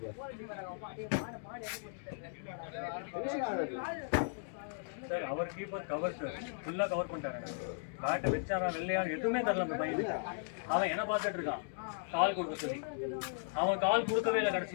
சார் அவர் கீப்பர் கவர் சார் ஃபுல்லாக கவர் பண்ணிட்டாங்க. பேட்டை வச்சாரா வெள்ளையா எதுவுமே தரல அந்த பையனுக்கு. அவன் என்ன பார்த்துட்டு இருக்கான் கால் கொடுக்க சொல்லி. அவன் கால் கொடுக்கவே இல்லை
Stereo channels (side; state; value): right; silent; digital silence